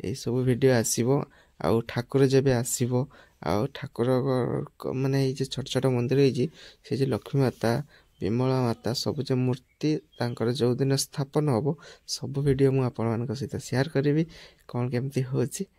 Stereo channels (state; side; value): identical; both; correlation 1.00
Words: ଏଇସବୁ ଭିଡ଼ିଓ ଆସିବ। ଆଉ ଠାକୁର ଯେବେ ଆସିବ, ଆଉ ଠାକୁର ମାନେ ଏଇ ଯେ ଛୋଟ ଛୋଟ ମନ୍ଦିର ହେଇଛି, ସେ ଯେ ଲକ୍ଷ୍ମୀ ମାତା, ବିମଳା ମାତା, ସବୁ ଯେ ମୂର୍ତ୍ତି ତାଙ୍କର ଯେଉଁଦିନ ସ୍ଥାପନ ହେବ ସବୁ ଭିଡ଼ିଓ ମୁଁ ଆପଣମାନଙ୍କ ସହିତ ସେୟାର କରିବି, କ'ଣ କେମିତି ହେଉଛି।